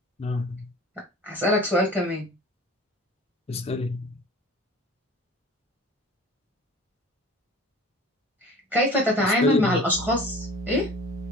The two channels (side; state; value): both; normal; correlation 0.42